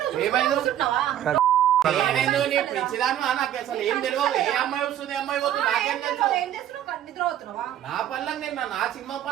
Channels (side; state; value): left; quieter; 11.3 dB